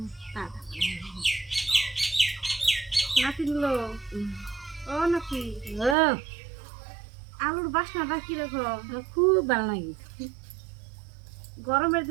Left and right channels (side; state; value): left; drops out; at 6.0 s